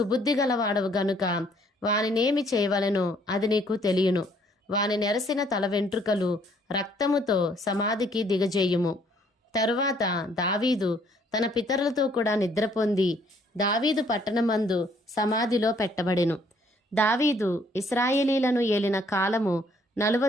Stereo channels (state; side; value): normal; both; correlation 0.64